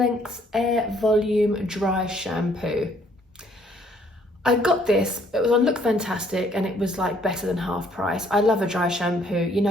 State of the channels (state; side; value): normal; both; correlation 0.64